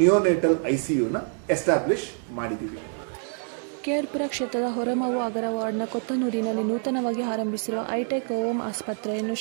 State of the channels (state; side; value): silent; left; 57 dB below the other